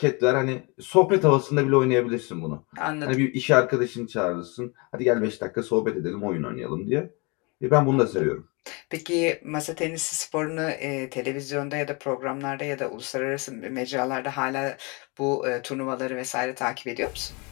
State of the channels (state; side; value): quieter; right; 29.5 dB